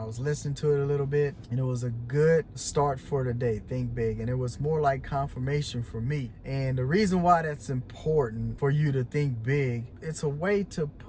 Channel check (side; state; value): both; identical; correlation 1.00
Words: was listening to it a little bit and it was a good start for the day. Think big. And it was more like confirmation for me. And the reason why that's important for you to think big, it's a way to